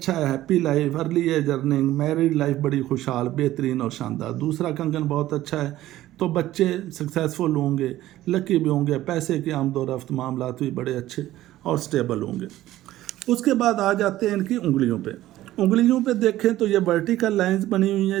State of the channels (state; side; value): quieter; left; 14.8 dB